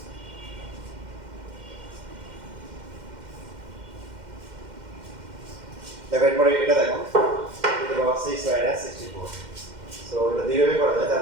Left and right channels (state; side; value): late; left; 2.1 ms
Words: দেখো এরপরে এটা দেখো, এটা বাবা 6 মাইনাস 64। সো এটা দুইভাবে করা যায়, তার